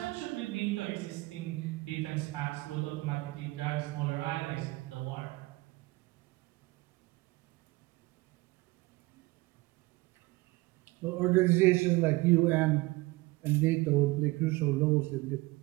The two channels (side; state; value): left; quieter; 21.7 dB